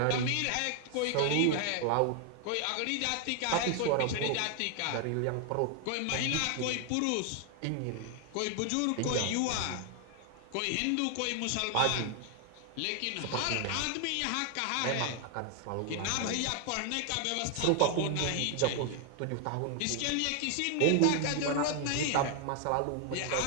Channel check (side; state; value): both; different; correlation 0.00